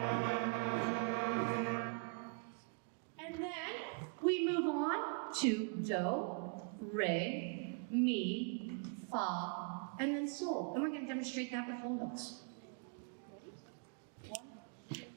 And then we move on to Do, Re, Mi, Fa, and then Sol. And we're going to demonstrate that with whole notes.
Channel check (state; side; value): quieter; left; 36.9 dB